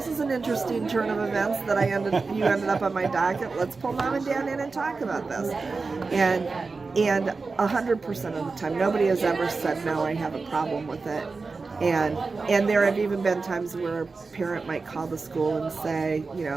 is an interesting turn of events that you ended up on my docket. Let's pull Mom and Dad in and talk about this. And 100% of the time, nobody has ever said, no, I have a problem with it. And there have even been times where a parent might call the school and say,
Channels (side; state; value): left; quieter; 4.2 dB